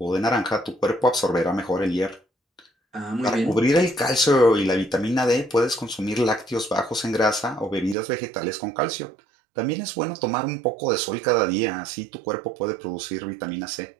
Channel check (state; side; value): drops out; left; at 8.0 s